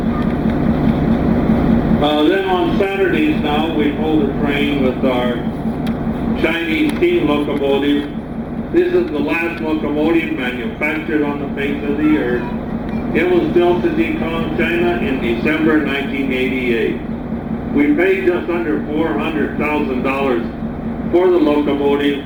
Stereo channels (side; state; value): both; identical; correlation 1.00